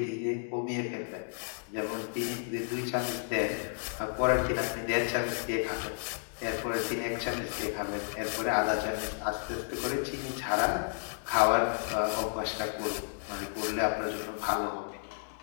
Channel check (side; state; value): right; silent; digital silence